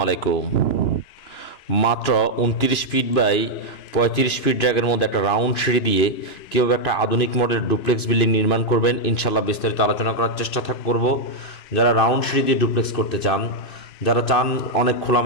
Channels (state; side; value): late; right; 2.9 ms